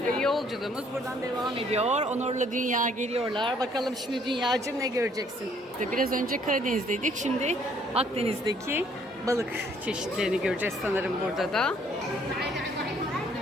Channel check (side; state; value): both; normal; correlation 0.63